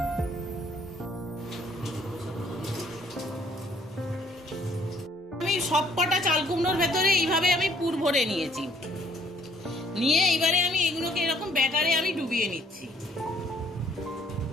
আমি সবকটা চাল কুমড়োর ভেতরে এইভাবে আমি পুর ভরে নিয়েছি। নিয়ে এবারে আমি এগুলোকে এরকম ব্যাটারে আমি ডুবিয়ে নিচ্ছি।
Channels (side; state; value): both; normal; correlation 0.62